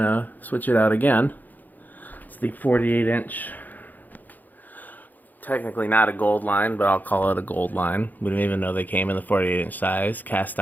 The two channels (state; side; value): late; right; 0.084 ms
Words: switch it out again. It's the 48-inch, technically not a gold line, but I'll call it a gold line. We didn't even know they came in the 48-inch size, cast